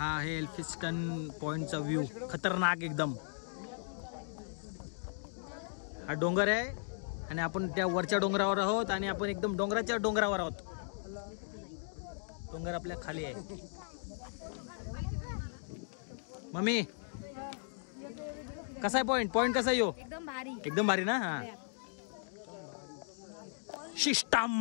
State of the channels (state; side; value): silent; right; digital silence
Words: आहे एल्फिस्टन पॉईंटचा व्ह्यू. खतरनाक एकदम. हा डोंगर आहे आणि आपण त्या वरच्या डोंगरावर आहोत आणि आपण एकदम डोंगराच्या डोंगरावर आहोत. डोंगर आपल्या खाली आहे. मम्मी कसा आहे पॉईंट कसा आहे यो? एकदम भारी ना. हा